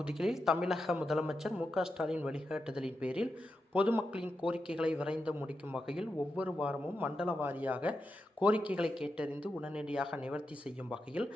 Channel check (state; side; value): normal; both; correlation 0.87